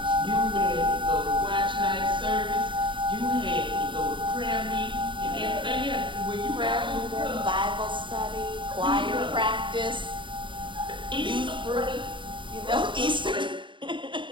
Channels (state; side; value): late; left; 0.24 ms